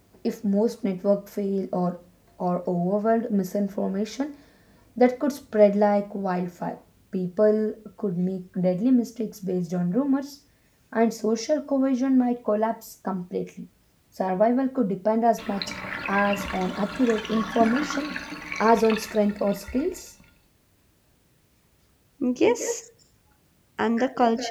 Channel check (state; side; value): identical; both; correlation 1.00